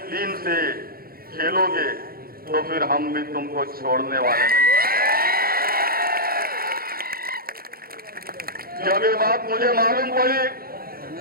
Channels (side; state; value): left; late; 0.43 ms